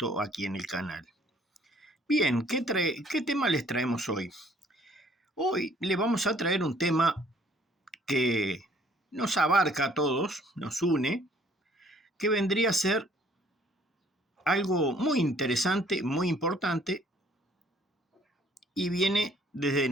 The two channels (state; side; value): normal; both; correlation 0.60